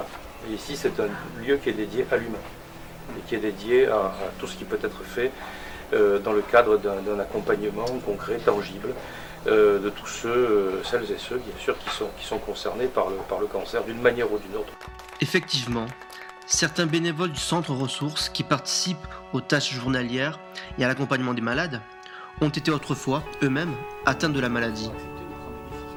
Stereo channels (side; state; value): both; identical; correlation 1.00